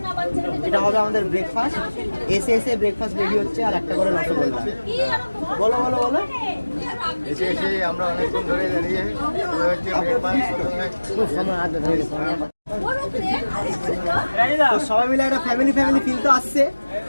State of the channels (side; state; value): both; inverted; correlation -1.00